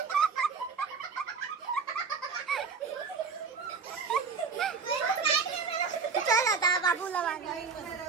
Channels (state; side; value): quieter; left; 5.3 dB